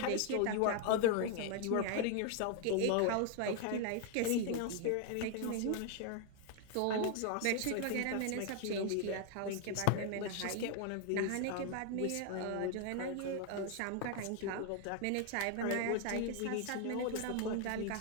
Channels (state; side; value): different; both; correlation 0.00